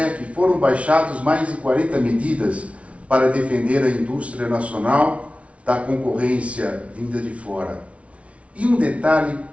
foram baixadas mais de 40 medidas para defender a indústria nacional da concorrência vinda de fora. E um detalhe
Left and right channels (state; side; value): late; left; 0.063 ms